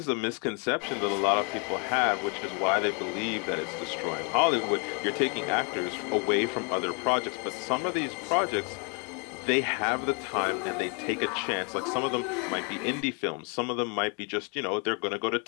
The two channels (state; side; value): quieter; right; 36.1 dB